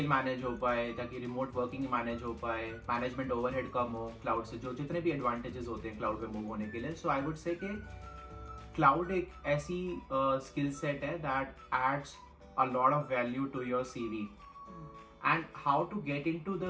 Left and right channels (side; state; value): both; identical; correlation 1.00